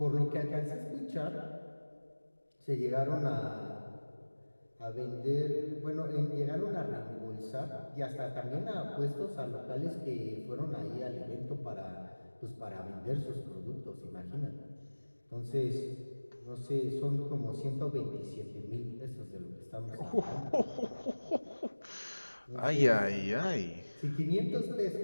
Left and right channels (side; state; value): both; inverted; correlation -1.00